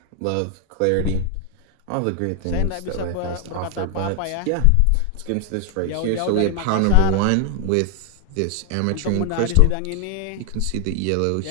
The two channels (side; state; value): both; different; correlation 0.00